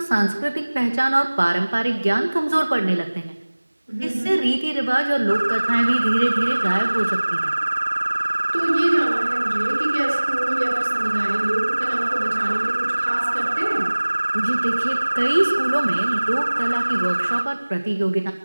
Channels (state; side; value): inverted; both; correlation -1.00